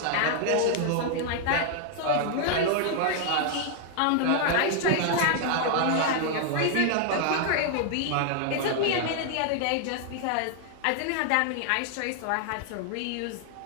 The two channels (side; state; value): both; different; correlation 0.00